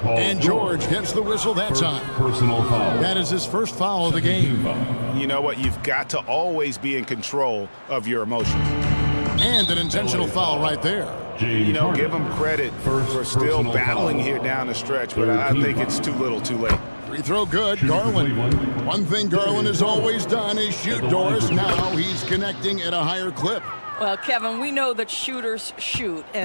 And George gets the whistle that time. Personal foul. That is his first foul of the game. You know what? You've got to always be in control of your emotions. And an intentional foul right there. You know, give them credit for still battling here down the stretch, but I think it's too little too late. Free throw good, Garland. One thing Garland has always done is shoot, Doris. Now he's connecting at a higher clip. Well, Kevin, we know that shooters shoot,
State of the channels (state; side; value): inverted; both; correlation -1.00